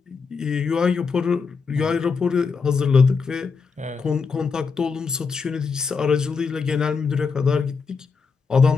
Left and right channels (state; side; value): quieter; right; 5.1 dB